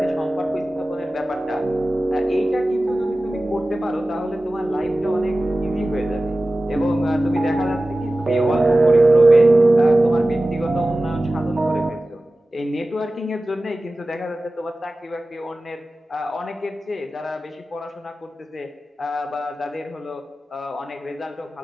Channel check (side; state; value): both; normal; correlation 0.96